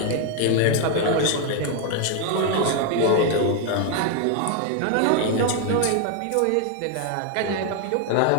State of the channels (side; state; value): both; different; correlation 0.01